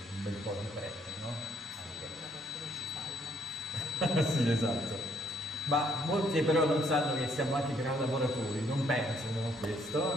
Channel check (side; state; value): both; normal; correlation 0.68